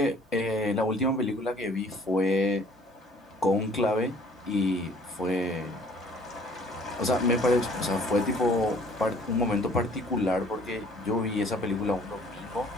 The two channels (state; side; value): normal; both; correlation 0.56